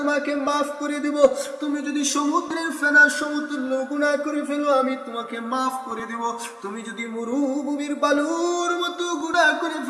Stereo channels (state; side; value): identical; both; correlation 1.00